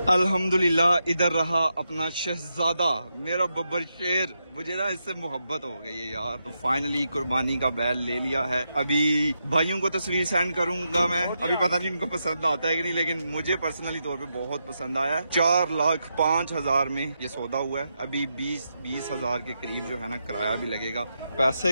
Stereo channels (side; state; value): both; inverted; correlation -0.84